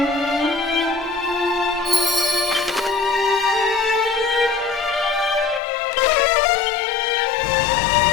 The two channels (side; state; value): right; drops out; at 5.6 s